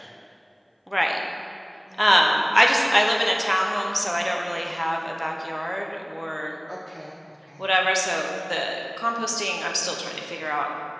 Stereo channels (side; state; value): both; identical; correlation 1.00